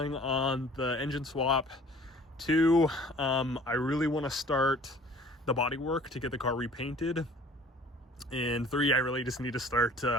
on the engine swap. Two, I really want to start the body work to get the car repainted. And three, I really just need to start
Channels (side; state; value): both; normal; correlation 0.50